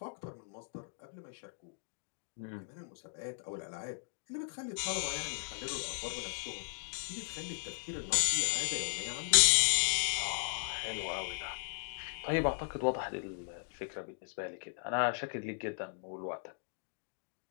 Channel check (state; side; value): silent; right; digital silence